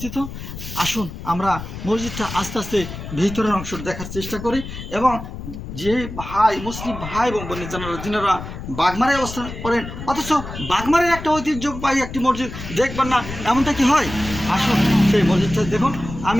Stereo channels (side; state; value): left; noise; rumble, 10 dB below the sound